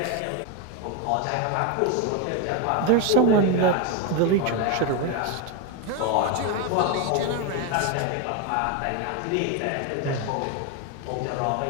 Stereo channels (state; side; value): different; both; correlation 0.02